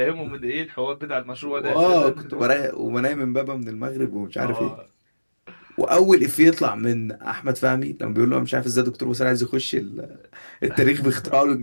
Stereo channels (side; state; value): both; inverted; correlation -1.00